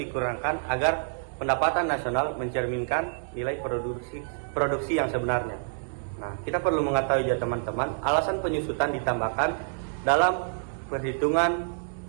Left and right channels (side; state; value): left; silent; digital silence